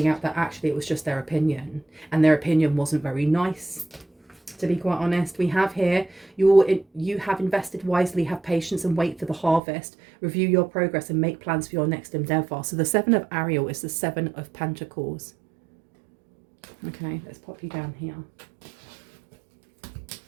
out that actually it was just their opinion, and their opinion wasn't very nice, to be quite honest. We have here, you have invested wisely, have patience and wait for the harvest, review your progress and make plans for your next endeavor. So the 7 of Ariel is the 7 of Pentacles. Okay, let's pop you down here.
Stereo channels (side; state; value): left; drops out; at 9.6 s